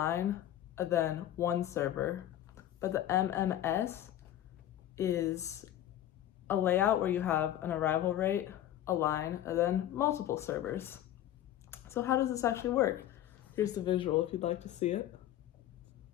and then one server. But the MMS is a layout where you have an arrival rate, a line, and then multiple servers. So how does this actually work? Here's the visual if you'd like to see it.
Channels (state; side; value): quieter; right; 12.3 dB